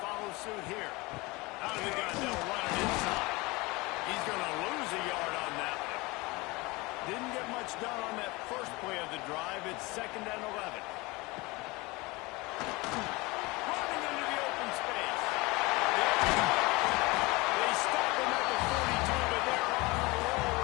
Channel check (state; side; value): quieter; right; 23.7 dB